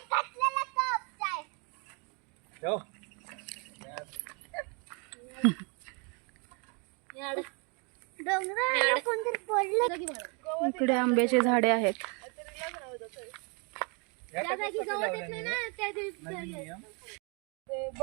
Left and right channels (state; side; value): quieter; left; 34.2 dB